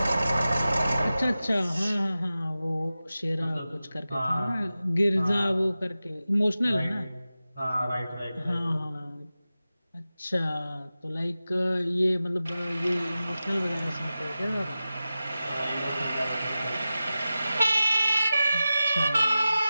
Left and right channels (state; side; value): inverted; both; correlation -0.94